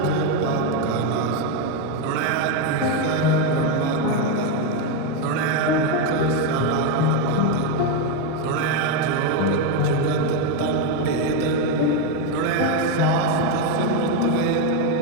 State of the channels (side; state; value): both; different; correlation 0.03